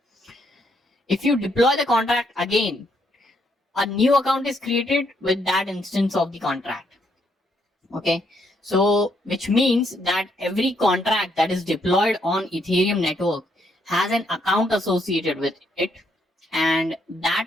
if you deploy the contract again, a new account is created with that instance of the contract. Okay, so which means that every contract that is deployed on Ethereum network has an account associated with it, and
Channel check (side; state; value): both; normal; correlation 0.74